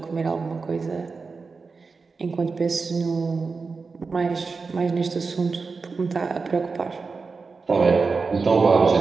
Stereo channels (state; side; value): quieter; left; 4.5 dB